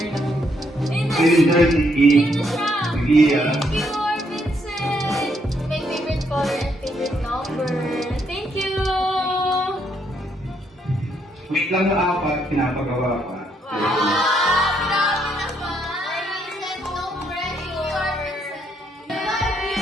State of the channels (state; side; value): normal; both; correlation 0.74